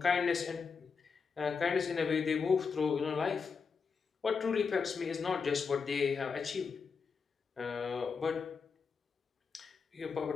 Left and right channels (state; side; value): quieter; right; 5.5 dB